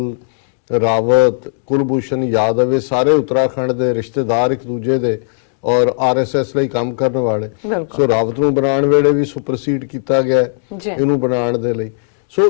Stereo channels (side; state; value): right; silent; digital silence